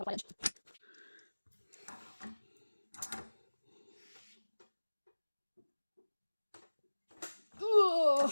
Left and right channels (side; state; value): both; inverted; correlation -1.00